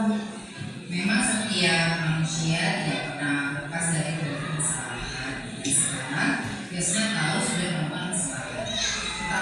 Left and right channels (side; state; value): both; identical; correlation 1.00